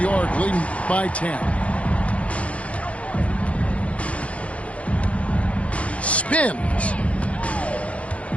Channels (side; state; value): right; late; 0.064 ms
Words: leading by 10. Spins.